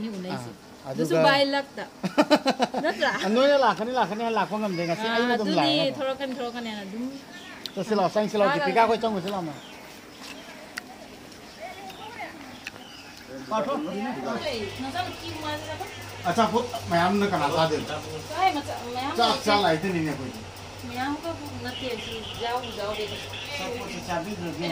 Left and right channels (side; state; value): both; identical; correlation 1.00